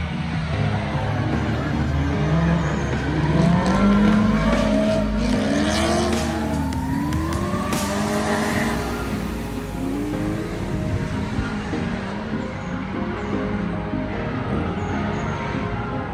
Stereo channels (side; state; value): both; identical; correlation 1.00